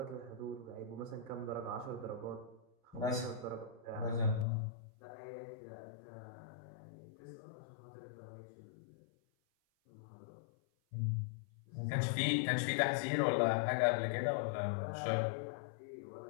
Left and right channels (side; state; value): right; drops out; at 4.5 s